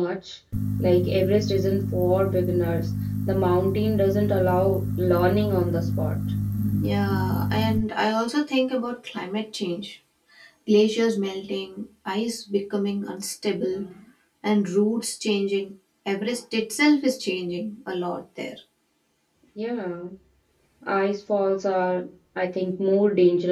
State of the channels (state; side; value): identical; both; correlation 1.00